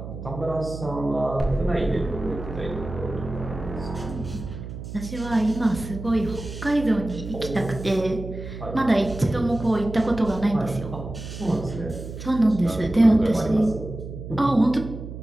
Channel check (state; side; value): noise; right; hum, 10 dB below the sound